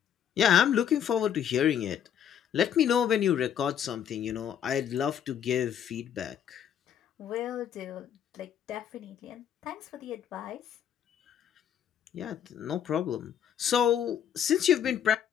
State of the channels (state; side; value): quieter; right; 9.2 dB